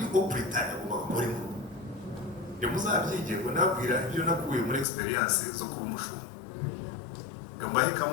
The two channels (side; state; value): right; drops out; at 4.9 s